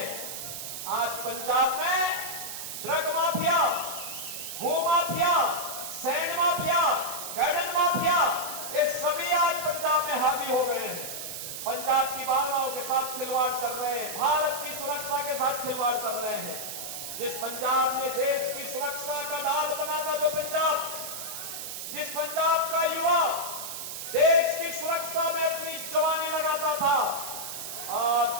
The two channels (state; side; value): noise; right; hiss, 7 dB below the sound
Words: आज पंजाब में ड्रग माफिया, भू mafia, sand mafia, garden mafia, ये सभी आज पंजाब में हावी हो गए हैं। पंजाब की भावनाओं के साथ खिलवाड़ कर रहे हैं, भारत की सुरक्षा के साथ खिलवाड़ कर रहे हैं। जिस पंजाब ने देश की सुरक्षा का ढाल बना था, जो पंजाब, जिस पंजाब का युवा देश की सुरक्षा में अपनी जवानी लगाता था,